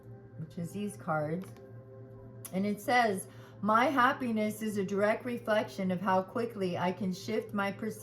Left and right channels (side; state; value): both; identical; correlation 1.00